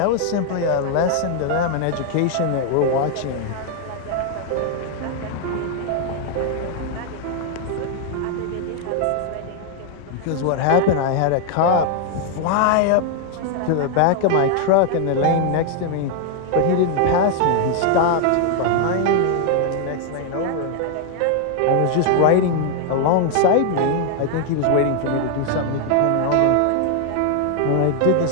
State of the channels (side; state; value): both; different; correlation 0.00